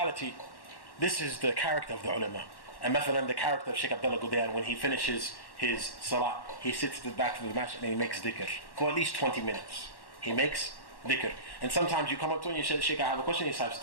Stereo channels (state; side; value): late; right; 1.1 ms